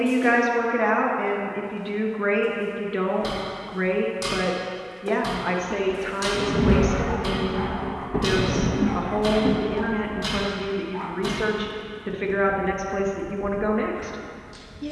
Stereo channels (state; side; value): identical; both; correlation 1.00